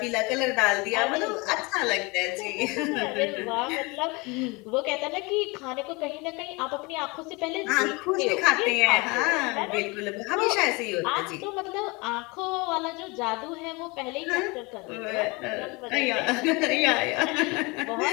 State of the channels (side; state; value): right; quieter; 26.6 dB